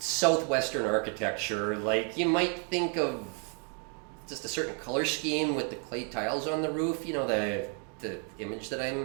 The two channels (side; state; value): left; quieter; 39.8 dB